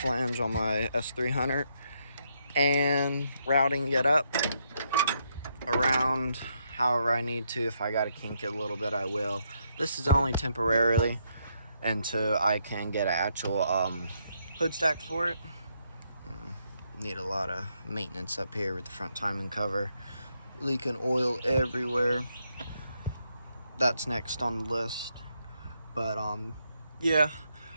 on my S300 and routing it up around however I need to. If I gotta kink it a little bit, I will. This is only temporarily until I can get an actual hood stack for it. Need a lot of maintenance up here with the front timing cover, leaking oil everywhere. That's next on the list. But yeah,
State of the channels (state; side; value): inverted; both; correlation -0.76